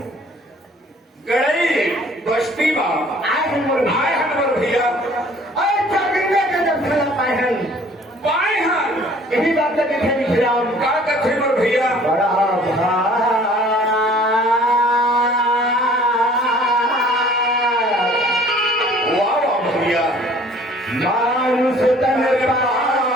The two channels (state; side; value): normal; both; correlation 0.53